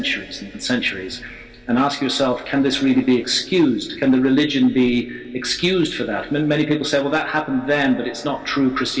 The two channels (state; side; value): identical; both; correlation 1.00